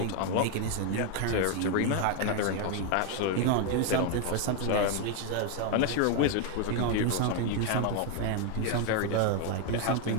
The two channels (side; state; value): both; different; correlation 0.01